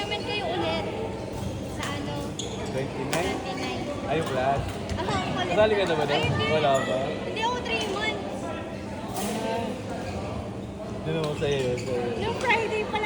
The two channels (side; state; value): both; identical; correlation 1.00